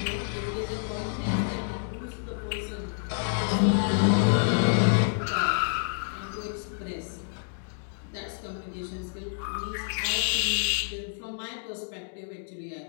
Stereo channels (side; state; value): right; silent; digital silence